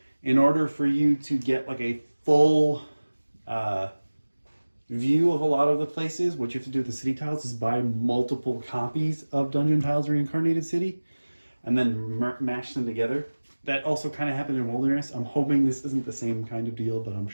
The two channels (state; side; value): inverted; both; correlation -1.00